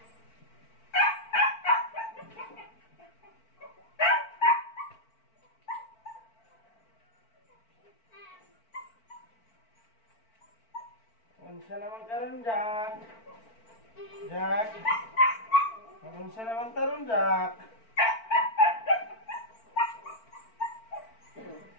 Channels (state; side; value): late; right; 4.4 ms